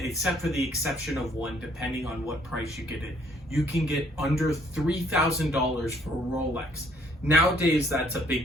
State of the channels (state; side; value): normal; both; correlation 0.64